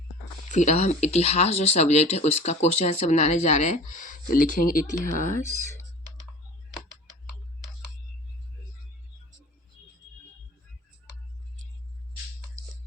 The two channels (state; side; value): normal; both; correlation 0.40